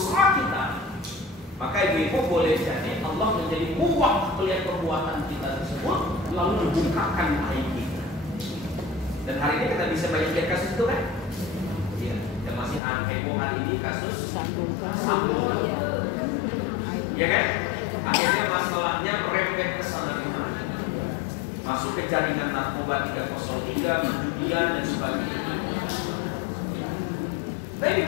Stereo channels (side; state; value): right; drops out; at 12.8 s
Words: kita, maka ibu-ibu boleh jadi Allah menjadi muak melihat perbuatan kita tersebut, lalu membukakan aib kita. Dan hari ini kita bisa banyak lihat kasus itu kan? Iya, yang masih heboh hari ini kasus sambung. Ya kan? Akhirnya masalahnya merembet ke sana kemari. Masuk ke jaringan narkoba 303, perjudian dan sebagainya. Nah